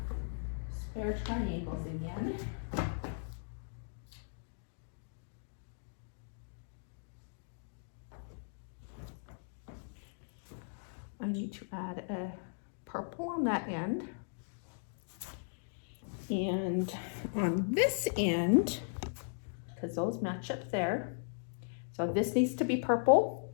spare triangles again. I need to add a purple on that end. And on this end, because those match up there, so this needs to be purple.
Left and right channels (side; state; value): right; silent; digital silence